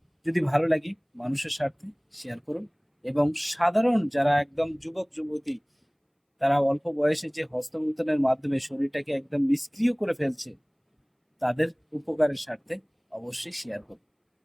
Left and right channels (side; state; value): both; identical; correlation 1.00